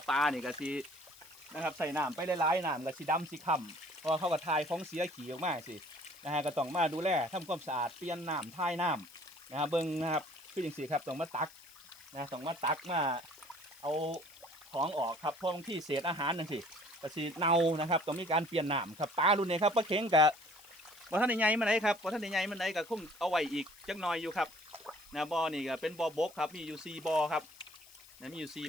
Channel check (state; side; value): noise; left; hiss, 22 dB below the sound